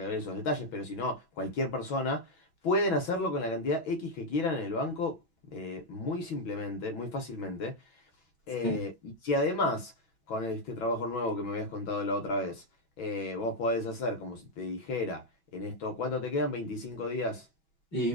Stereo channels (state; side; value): late; right; 6.1 ms